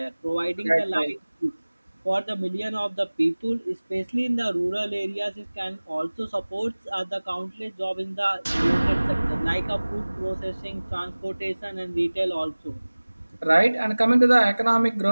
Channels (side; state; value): both; inverted; correlation -1.00